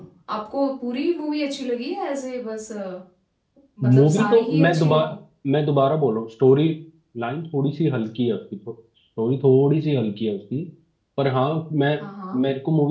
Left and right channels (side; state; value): both; identical; correlation 1.00